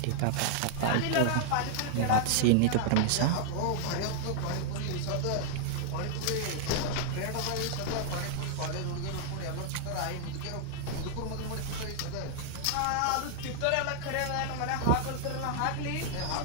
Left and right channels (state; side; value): different; both; correlation -0.01